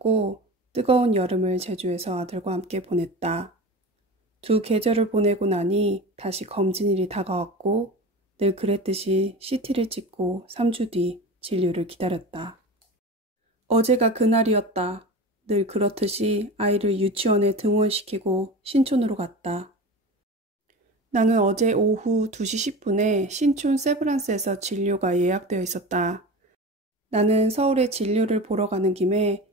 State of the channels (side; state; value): both; normal; correlation 0.31